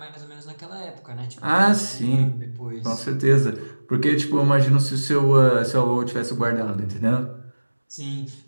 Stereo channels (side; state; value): both; inverted; correlation -1.00